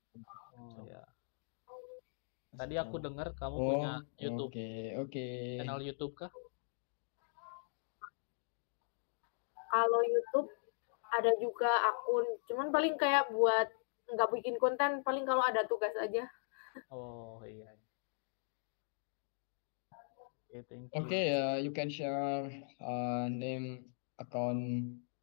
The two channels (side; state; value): right; silent; digital silence